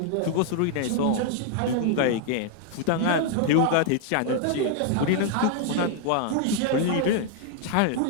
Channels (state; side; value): different; both; correlation 0.00